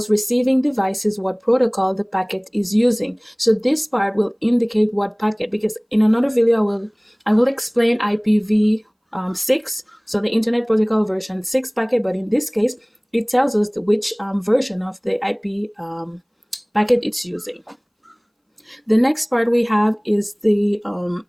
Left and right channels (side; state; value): both; identical; correlation 1.00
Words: receiving devices what protocol the packet is using. So this part will indicate what packet, because in another video I will explain IPv6, so the Internet Protocol version 6 packet, but in this case it tells us which version of the IP packet it's using. The next part we have is the